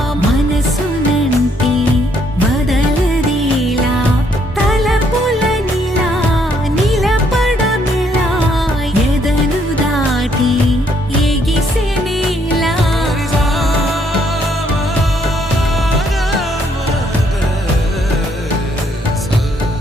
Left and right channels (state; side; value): normal; both; correlation 0.70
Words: మనసునంటి బదలదేలా తలపులనిలా నిలపడమిలా ఎదను దాటి ఎగిసెనేలా